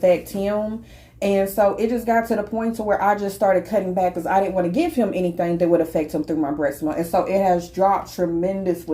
him. And so it just got to the point to where I just started cutting back because I didn't want to give him anything that would affect him through my breast milk. And so it has dropped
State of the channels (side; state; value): both; identical; correlation 1.00